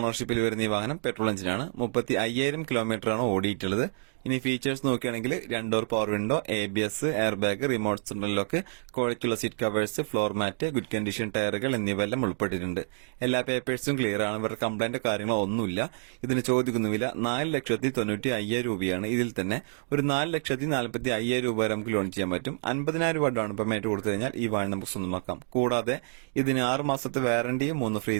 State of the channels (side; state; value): left; silent; 59 dB below the other